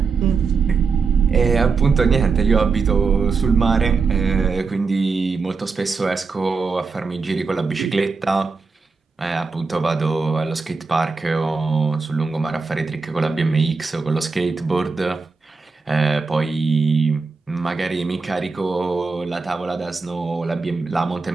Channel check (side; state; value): left; quieter; 4.7 dB